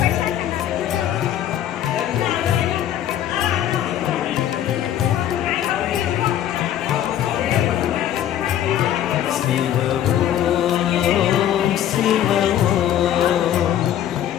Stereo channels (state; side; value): quieter; right; 11.2 dB